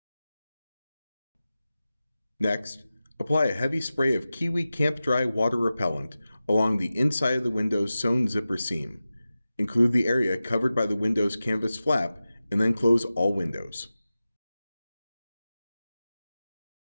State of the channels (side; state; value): both; inverted; correlation -0.95